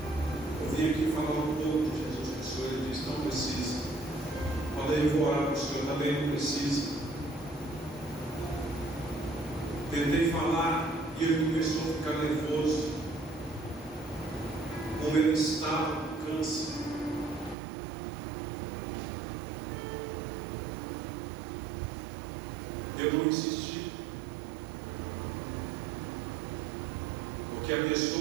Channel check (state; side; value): drops out; left; at 17.6 s